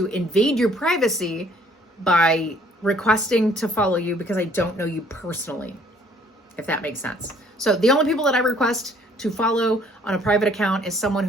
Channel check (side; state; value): both; normal; correlation 0.60